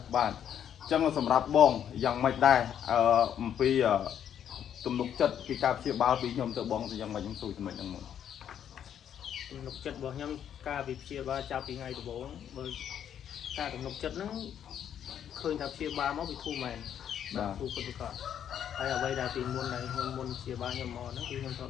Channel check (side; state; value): right; quieter; 9.4 dB